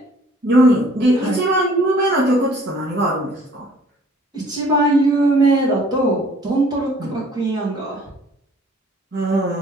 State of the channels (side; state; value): both; normal; correlation 0.56